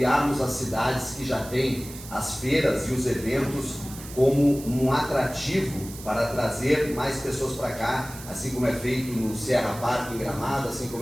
as cidades que já têm as feiras e os eventos como um atrativo para trazer mais pessoas para cá, assim como é feito no Serra Park em Gramado, assim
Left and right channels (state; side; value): noise; right; hiss, 15 dB below the sound